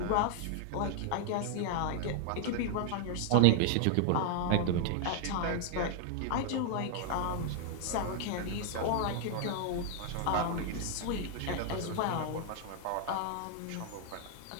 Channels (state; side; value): different; both; correlation 0.00